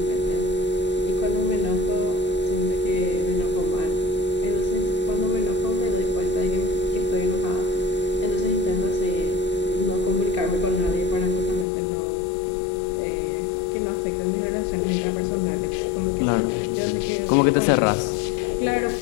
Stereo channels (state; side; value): drops out; right; at 11.7 s